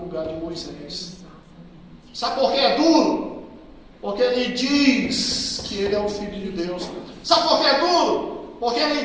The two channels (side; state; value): both; identical; correlation 1.00